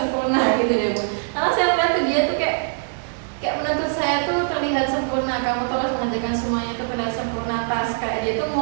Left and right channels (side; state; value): left; silent; 64 dB below the other